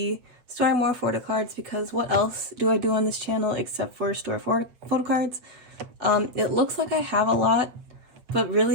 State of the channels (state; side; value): late; left; 8.2 ms